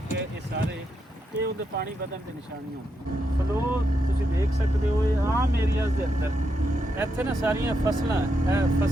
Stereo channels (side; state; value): both; normal; correlation 0.82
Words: ਹੈ ਇਹ ਸਾਰੇ ਇਹ ਉਹਦੇ ਪਾਣੀ ਵਧਣ ਦੇ ਨਿਸ਼ਾਨੀਆਂ ਹੁੰਦੀਆਂ ਫਲੋ ਤੁਸੀਂ ਦੇਖ ਸਕਦੇ ਹੋ ਇਹ ਆਮ ਏਰੀਆਜ਼ ਦੇ ਅੰਦਰ ਇੱਥੇ ਨਾ ਸਾਰੀਆਂ ਫਸਲਾਂ ਇਹ